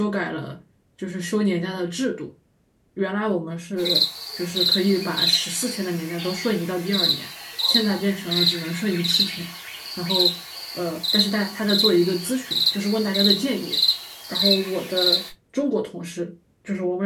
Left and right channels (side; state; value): both; identical; correlation 1.00